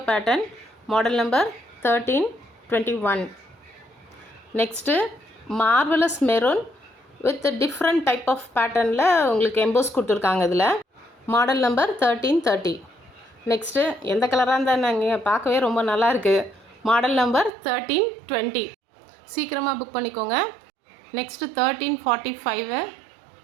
pattern, model number 1321. Next marvelous maroon with different type of pattern la உங்களுக்கு EMBOSS கொடுத்துருக்காங்க. இதில் model number 1330. Next எந்த கலராக இருந்தால் நாங்கள் பார்க்கவே ரொம்ப நல்லா இருக்குது. Model number 1320. சீக்கிரமாக புக் பண்ணிக்கோங்க. Next 1345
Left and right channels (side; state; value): left; drops out; at 17.5 s